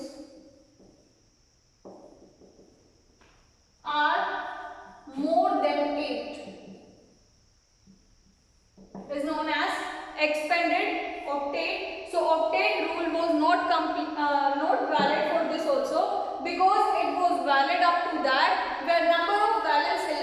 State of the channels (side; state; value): both; identical; correlation 1.00